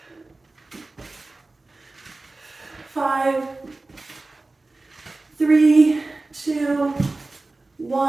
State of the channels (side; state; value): left; quieter; 3.2 dB